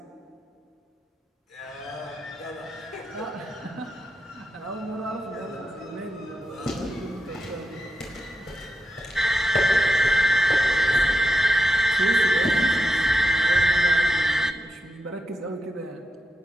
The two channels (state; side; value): normal; both; correlation 0.88